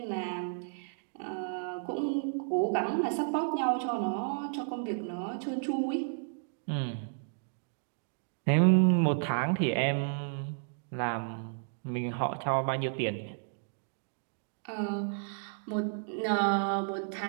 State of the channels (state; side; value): silent; left; digital silence